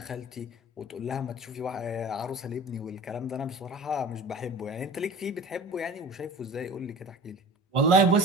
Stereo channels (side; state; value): both; normal; correlation 0.39